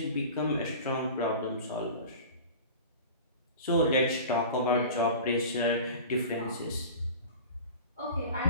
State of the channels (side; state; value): both; inverted; correlation -0.37